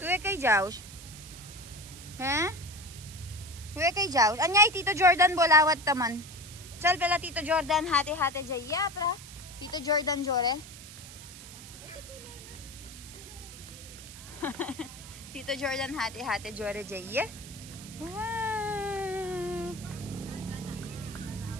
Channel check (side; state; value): right; noise; hiss, 15 dB below the sound